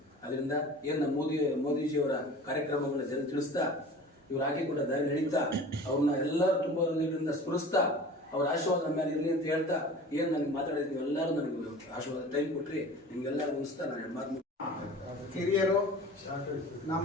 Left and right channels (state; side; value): normal; both; correlation 0.40